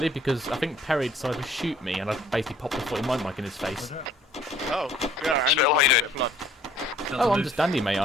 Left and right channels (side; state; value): both; normal; correlation 0.58